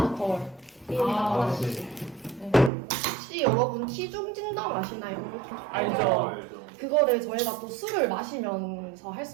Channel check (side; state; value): left; drops out; at 2.7 s